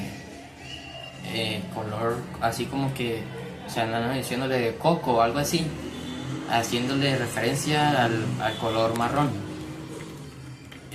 color así como que, o sea, no, diciéndole de coco o algo así, haciéndole referencia al color marrón.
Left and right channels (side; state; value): both; identical; correlation 1.00